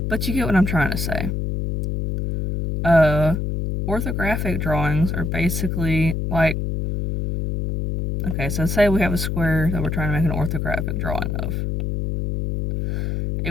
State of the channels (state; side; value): noise; left; hum, 1 dB below the sound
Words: But you get what I'm trying to say. Orthographic drawings are basically like Okay, so say we have a square that we're trying to make an orthographic drawing of.